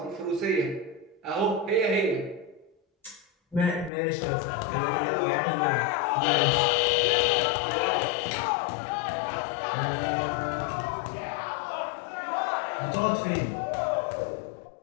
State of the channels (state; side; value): drops out; right; at 3.9 s